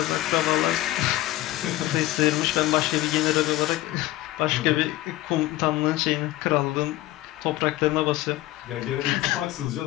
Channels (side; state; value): right; quieter; 16.6 dB